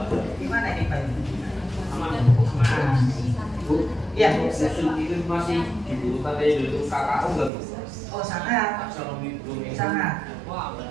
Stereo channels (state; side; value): drops out; left; at 7.5 s